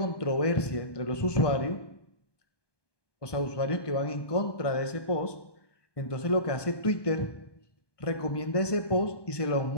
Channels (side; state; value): right; late; 1.2 ms